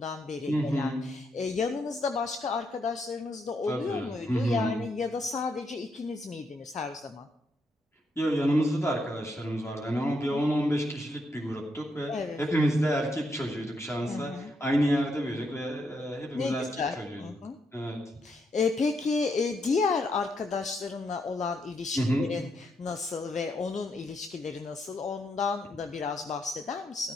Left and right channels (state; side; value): normal; both; correlation 0.78